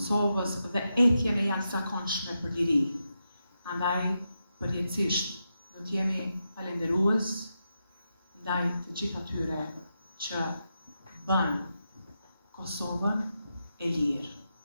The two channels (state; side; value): inverted; both; correlation -0.87